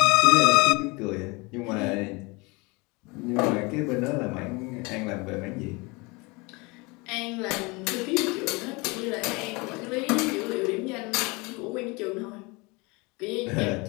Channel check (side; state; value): right; quieter; 26.6 dB